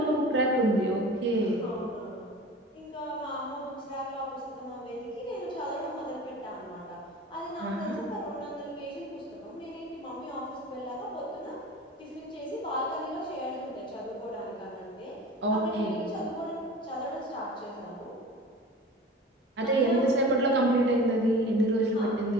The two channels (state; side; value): normal; both; correlation 0.38